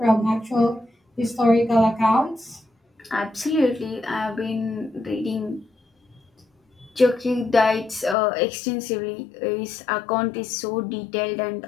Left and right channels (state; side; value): drops out; right; at 8.2 s